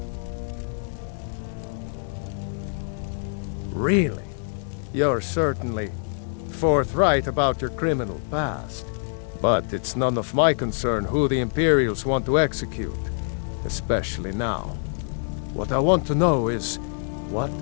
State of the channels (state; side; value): silent; right; digital silence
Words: Really? You're certainly forthright about your criminal past. But it's none of my concern who the Imperials want to execute, especially now. What I want to know is, what